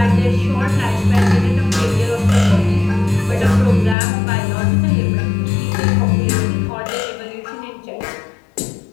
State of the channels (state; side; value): drops out; right; at 4.0 s